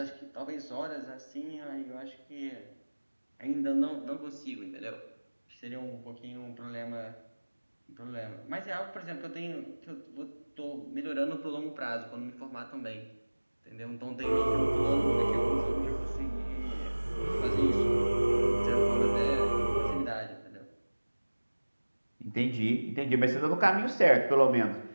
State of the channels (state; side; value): inverted; both; correlation -1.00